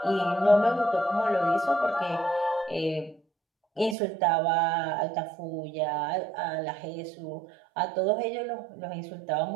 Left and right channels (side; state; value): left; drops out; at 4.0 s